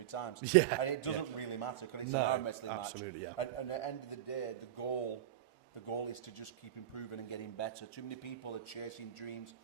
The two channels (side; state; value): left; quieter; 11.7 dB